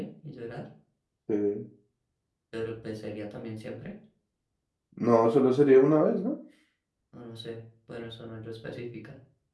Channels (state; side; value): identical; both; correlation 1.00